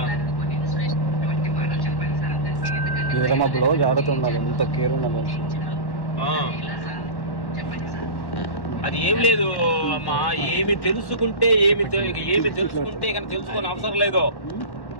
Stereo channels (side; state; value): right; late; 1.1 ms